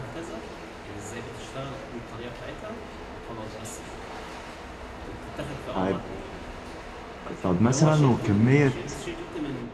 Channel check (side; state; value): both; identical; correlation 1.00